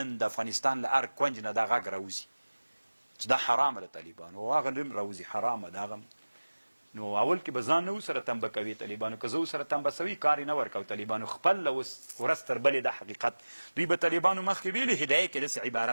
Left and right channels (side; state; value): both; inverted; correlation -1.00